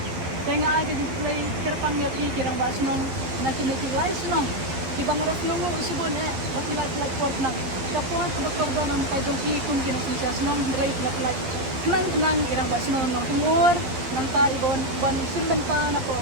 tenga ai ke blai kerpang ya ti kirang ba snong na kini ki lai snong ki bangaras nungo usibon bakila plak port nang kapo ka bakordon am tajong ki kun kini sinja snong rei plak kenang irang ba snong nong tumur manta ibon ban simbenta na po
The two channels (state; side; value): late; left; 11 ms